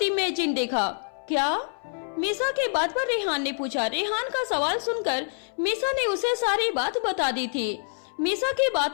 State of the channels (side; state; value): right; silent; 61 dB below the other